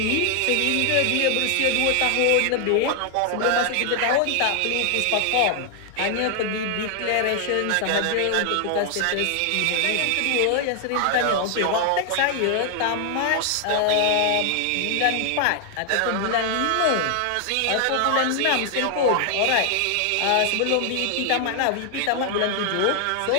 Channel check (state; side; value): different; both; correlation 0.00